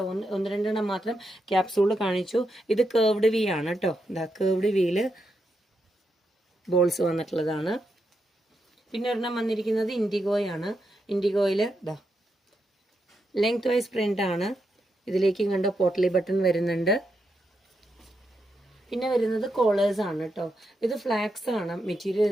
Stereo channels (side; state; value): both; normal; correlation 0.83